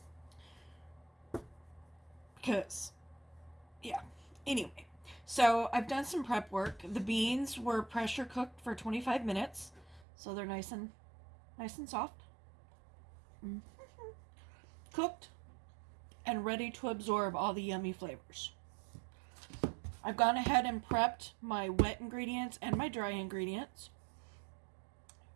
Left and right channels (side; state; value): left; drops out; at 10.1 s